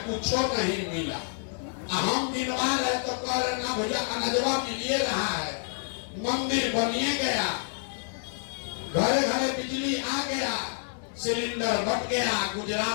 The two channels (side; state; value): right; silent; 58 dB below the other